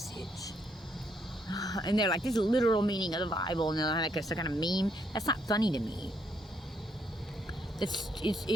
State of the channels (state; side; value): normal; both; correlation 0.73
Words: And they're like, this is a literal meaning of the Bible, and they're like some kind of meme. That's not funny to me.